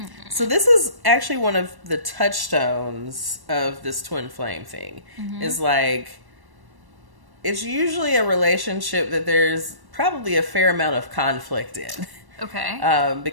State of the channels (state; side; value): late; left; 1.1 ms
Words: So this is actually one of the touchstones of this twin flame thing. Is like, it's usually a relationship that there's probably a fair amount of conflict in. Okay.